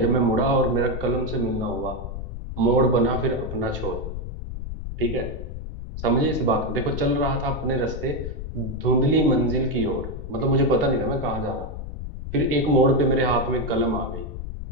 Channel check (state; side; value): noise; left; rumble, 7 dB below the sound